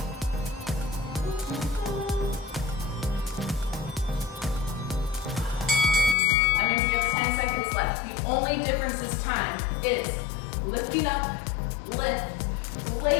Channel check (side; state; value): right; drops out; at 6.2 s